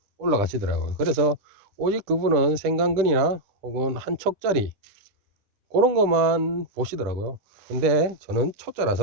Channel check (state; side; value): late; left; 10 ms